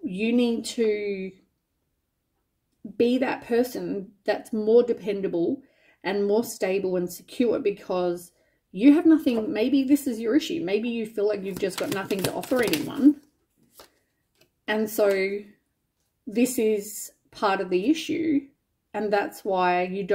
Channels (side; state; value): both; identical; correlation 1.00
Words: you need to be that person that's more dependable and more stable and secure, because you have nothing. Maybe this is your issue. Maybe you feel like you've just got nothing to offer anyone. And so this is part of the issue. And that's why you